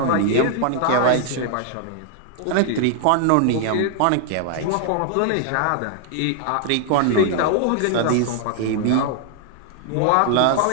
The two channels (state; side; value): different; both; correlation 0.00